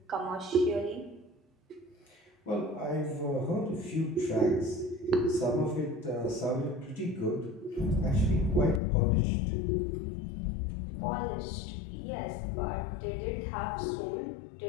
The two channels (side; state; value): right; drops out; at 8.8 s